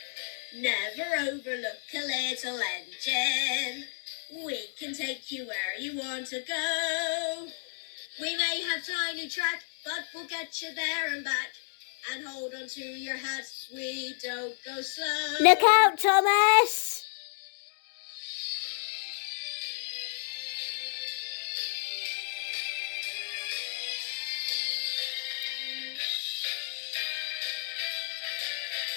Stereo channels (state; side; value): silent; right; 57 dB below the other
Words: Never overlook a little engine. We can take you where you want to go. We may have tiny track, but we'll get you there and back. And hold on to your hats, we don't go slow. Look out, Thomas!